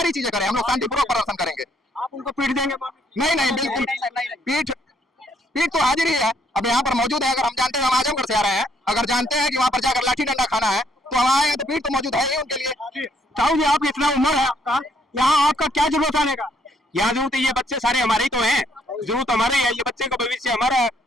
चीजें करें, हम लोग शांतिपूर्वक प्रदर्शन करेंगे। आप उनको पीट देंगे? नहीं नहीं, बिल्कुल पीठ तो हाजिर ही है। अब यहाँ पर मौजूद है, अगर हम जानते हैं हम आजमगढ़ से आ रहे हैं, अगर जानते हैं कि वहाँ पर जाकर लाठी डंडा खाना है तो हम आए हैं, तो पीठ तो मौजूद है ही उनके लिए। साहू जी, आप इतना उम्र है आपका, यहाँ आपका क्या जरूरत आने का? यहाँ जरूरत है, ये बच्चे सारे हमारे ही तो हैं, जरूरत हमारे है, ये बच्चे का भविष्य हमारा है।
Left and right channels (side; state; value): both; normal; correlation 0.69